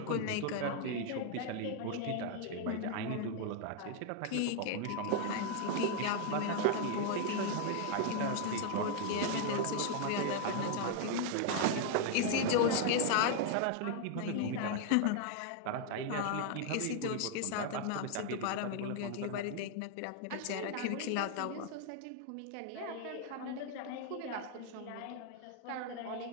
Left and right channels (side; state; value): both; different; correlation 0.00